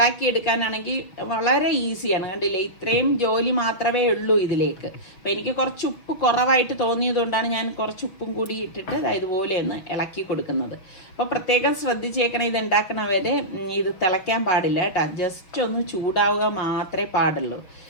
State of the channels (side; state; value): right; late; 6.1 ms